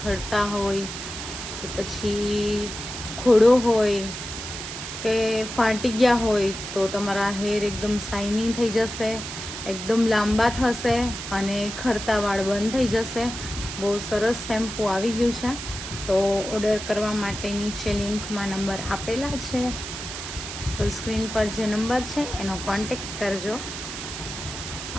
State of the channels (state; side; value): noise; right; hiss, 8 dB below the sound